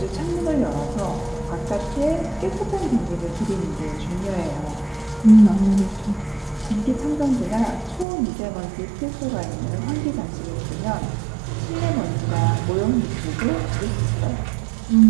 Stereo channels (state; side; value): drops out; left; at 8.1 s